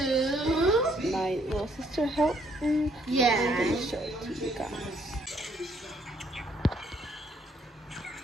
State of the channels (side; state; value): both; normal; correlation 0.68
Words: My little sister helped me. Yeah. I'm gonna show it to you guys.